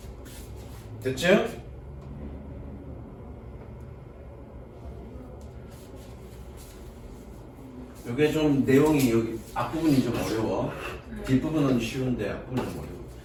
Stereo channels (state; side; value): identical; both; correlation 1.00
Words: 됐죠? 이게 좀 내용이 여기 앞부분이 좀 어려워. 뒷부분은 쉬운데 앞부분은 좀 어려워.